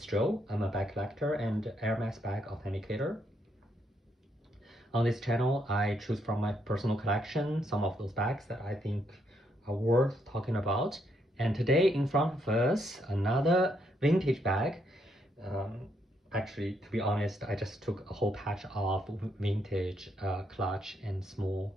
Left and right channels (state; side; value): normal; both; correlation 0.75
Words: Joe. I'm a bag collector and Hermes bag authenticator. On this channel, I choose from my personal collection some of those bags that I think are worth talking about. And today in front of us, another vintage bag. Actually, to be honest, I just took a whole patch of vintage clutch and small